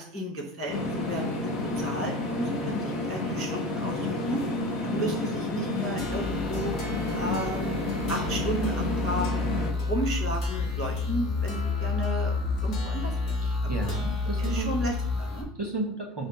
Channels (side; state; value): both; normal; correlation 0.41